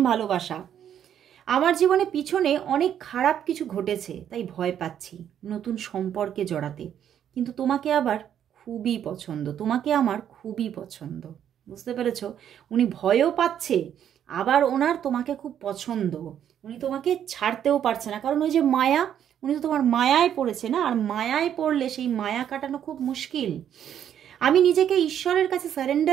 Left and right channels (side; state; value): left; quieter; 9.6 dB